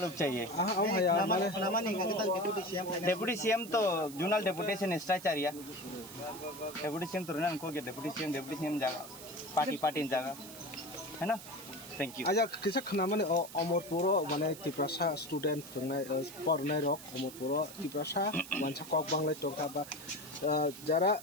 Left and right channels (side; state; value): right; noise; hiss, 15 dB below the sound